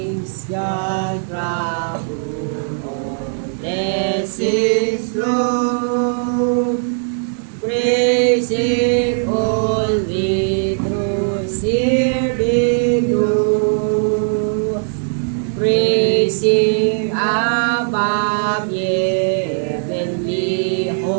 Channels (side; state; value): left; silent; digital silence